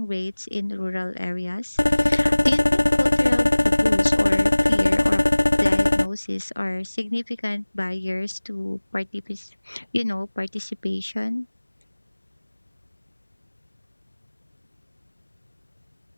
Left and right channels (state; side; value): inverted; both; correlation -1.00